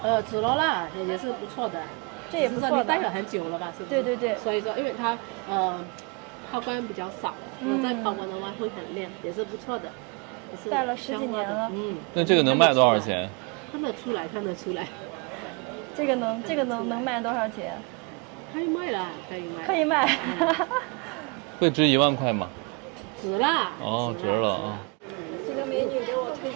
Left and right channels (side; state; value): left; quieter; 32.1 dB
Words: 紫罗兰也是不错的，这也不错的。戴了很久了吧？是不是？对对对。所以说，因为它抛光比较少，再抛光的话会很亮，也是不错的。戴了10几年了。那这个能卖多少钱？看得出来，看得出来。这个能卖多少钱？可以卖了，可以卖。可以卖。会值1万块吗？值了。哦，值了啊。这个美女给我推